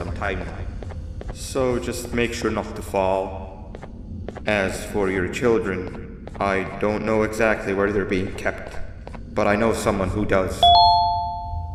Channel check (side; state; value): both; identical; correlation 1.00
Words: time now. So just make sure not to fall. As for your children, I don't know exactly where they're being kept, but I know someone who does.